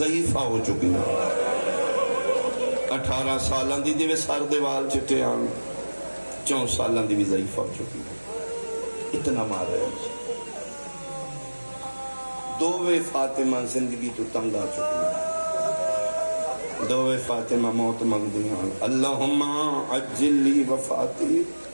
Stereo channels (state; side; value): inverted; both; correlation -1.00